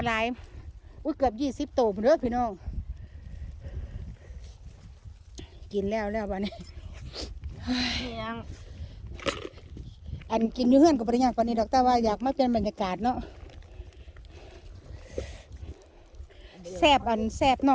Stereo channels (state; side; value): identical; both; correlation 1.00